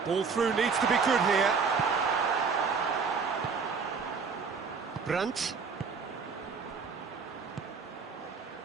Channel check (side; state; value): left; quieter; 5.4 dB